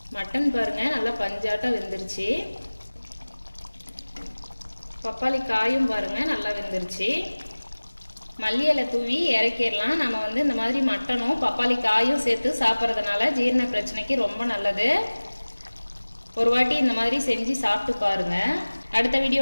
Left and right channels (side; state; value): both; inverted; correlation -1.00